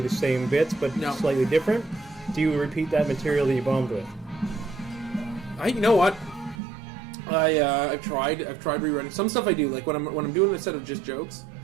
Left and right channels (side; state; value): left; drops out; at 6.6 s